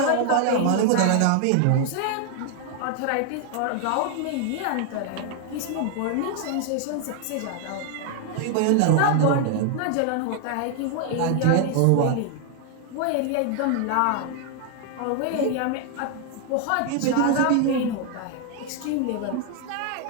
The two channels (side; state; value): both; different; correlation 0.00